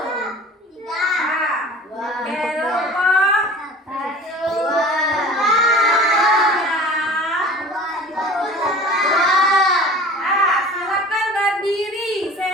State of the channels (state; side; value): normal; both; correlation 0.41